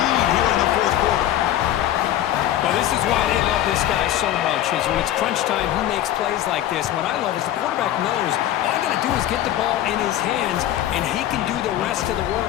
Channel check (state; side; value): quieter; right; 12.6 dB